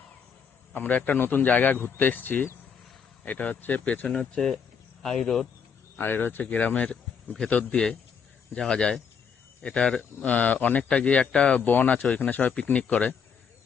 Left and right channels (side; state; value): right; quieter; 6.6 dB